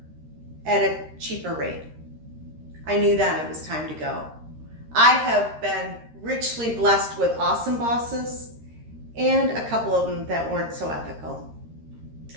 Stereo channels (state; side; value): late; left; 13 ms